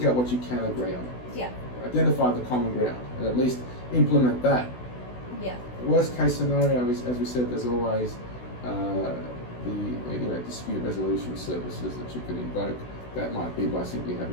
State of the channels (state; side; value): late; right; 16 ms